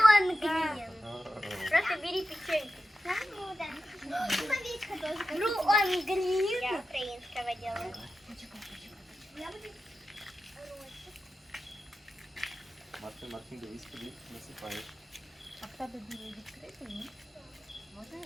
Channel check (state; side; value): normal; both; correlation 0.91